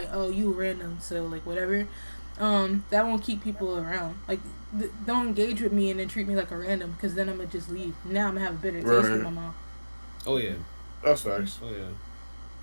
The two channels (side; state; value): both; inverted; correlation -1.00